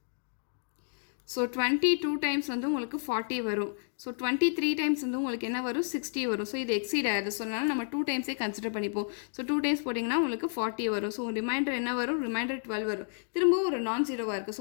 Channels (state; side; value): silent; right; digital silence